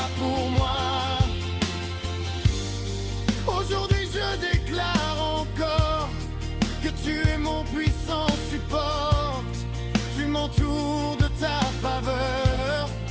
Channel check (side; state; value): both; identical; correlation 1.00